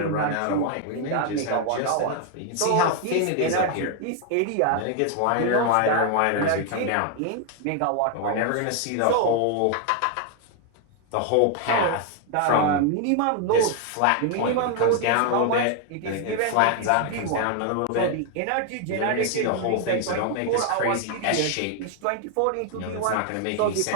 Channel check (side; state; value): both; different; correlation 0.01